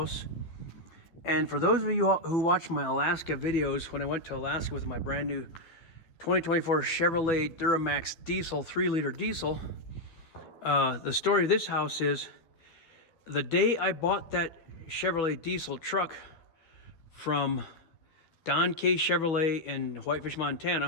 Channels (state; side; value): late; right; 12 ms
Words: And for those of you who watch my Alaska videos, when I went to Alaska with my brand new 2024 Chevrolet Duramax diesel, 3-liter diesel, the story of this house is the day I bought that Chevrolet diesel truck from Don K. Chevrolet in Whitefish,